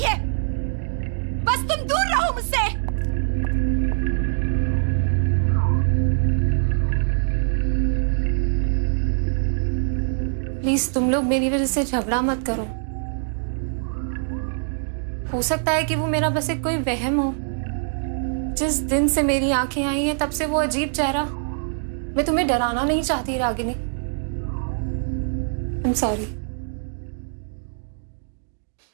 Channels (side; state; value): left; silent; digital silence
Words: है। बस तुम दूर रहो मुझसे। प्लीज तुम लोग मेरी वजह से झगड़ा मत करो। हो सकता है कि वो मेरा बस एक कोई वहम हो। जिस दिन से मेरी आंखें आई हैं तब से वो अजीब चेहरा। मैं तुम्हें डराना नहीं चाहती रागिनी। I am sorry.